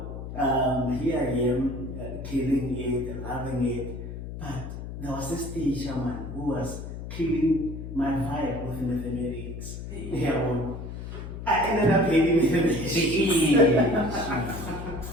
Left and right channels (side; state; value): left; noise; hum, 8 dB below the sound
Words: here I am, killing it, loving it. But there was this teacher man who was killing my vibe with mathematics. Yeah, well, I ended up hating mathematics.